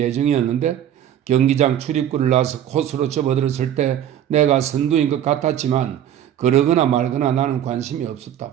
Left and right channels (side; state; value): left; quieter; 10.5 dB